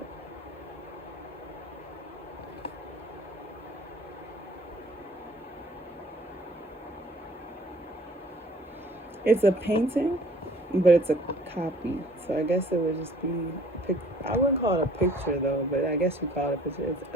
It's a painting, but it's a copy. So I guess it would just be, I wouldn't call it a picture though, but I guess you call it a picture.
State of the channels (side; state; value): both; normal; correlation 0.54